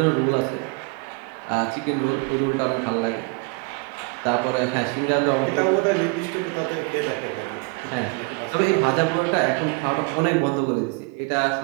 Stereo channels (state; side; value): quieter; left; 30.1 dB